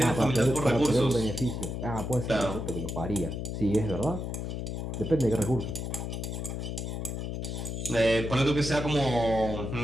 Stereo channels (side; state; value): left; noise; hum, 4 dB below the sound